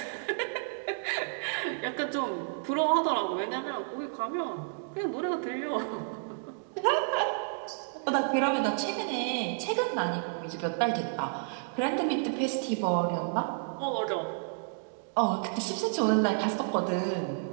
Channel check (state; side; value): silent; left; digital silence